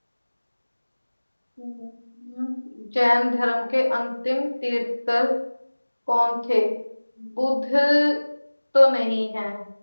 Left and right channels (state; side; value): inverted; both; correlation -1.00